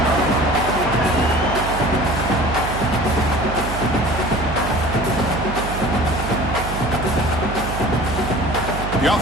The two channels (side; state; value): right; noise; hum, 6 dB below the sound